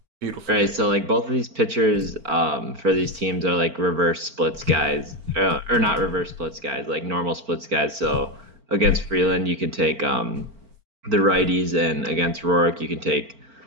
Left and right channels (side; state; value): left; late; 4.4 ms